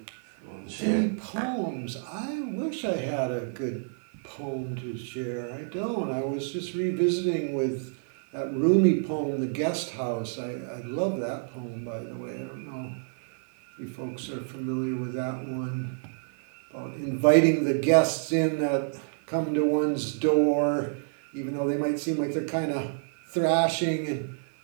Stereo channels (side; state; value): left; silent; 59 dB below the other